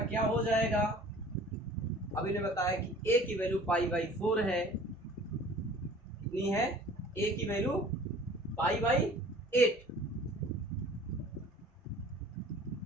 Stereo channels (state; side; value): normal; both; correlation 0.48